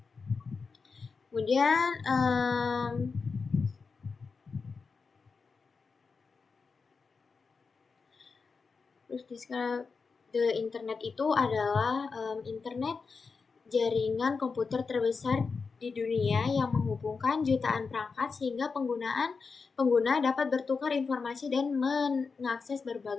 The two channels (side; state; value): right; quieter; 4.9 dB